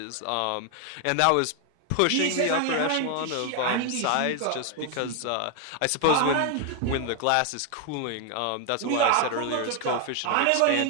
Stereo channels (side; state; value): both; different; correlation 0.01